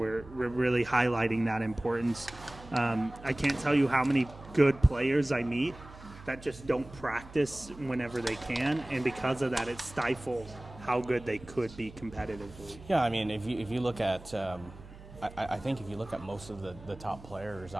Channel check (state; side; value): noise; right; hum, 18 dB below the sound